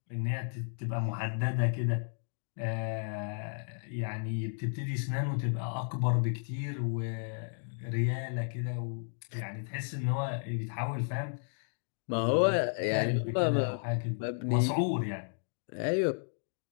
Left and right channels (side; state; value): right; silent; digital silence